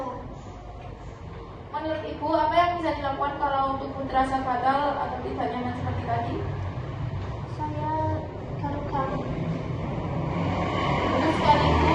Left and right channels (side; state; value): both; identical; correlation 1.00